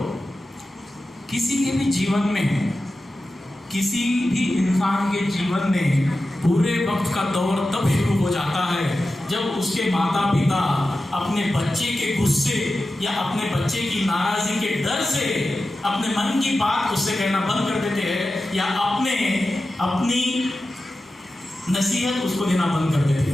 किसी के भी जीवन में, किसी भी इंसान के जीवन में बुरे वक्त का दौर तब शुरू हो जाता है जब उसके माता पिता अपने बच्चे के गुस्से या अपने बच्चे की नाराजगी के डर से अपने मन की बात उससे कहना बंद कर देते हैं, या अपनी नसीहत उसको देना बंद कर देते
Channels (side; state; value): both; normal; correlation 0.93